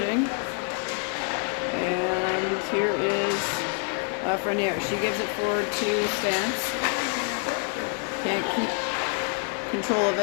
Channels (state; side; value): quieter; right; 38.9 dB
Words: And here is Frenier. She gives it forward to Stance. Can't keep control of